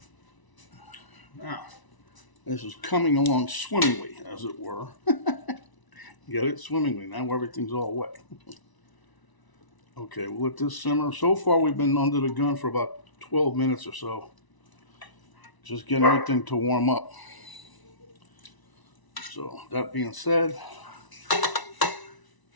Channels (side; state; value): right; late; 1.0 ms